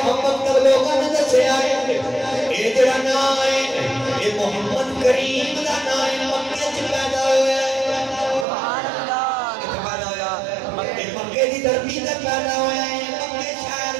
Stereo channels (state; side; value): drops out; left; at 8.5 s